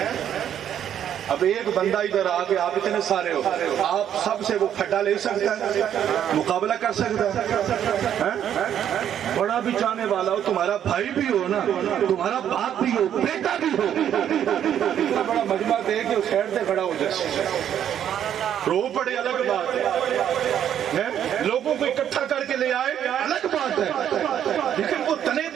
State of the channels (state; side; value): quieter; left; 9.8 dB